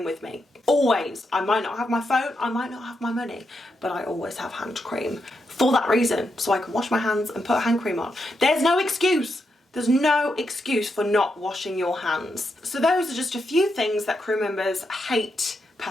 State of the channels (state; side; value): normal; both; correlation 0.83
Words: with me. Always. I might not have my phone, I might not have my money, but I always have hand cream for that reason, so I can wash my hands and put hand cream on. There's no excuse. There's no excuse for not washing your hands. So those are just a few things that crew members hate